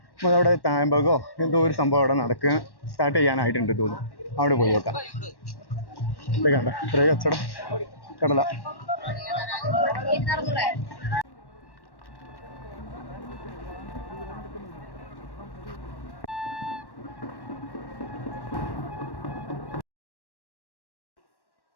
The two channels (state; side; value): late; right; 1.1 ms